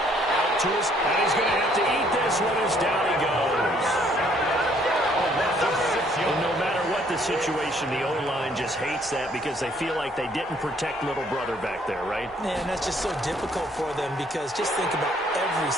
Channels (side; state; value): both; normal; correlation 0.64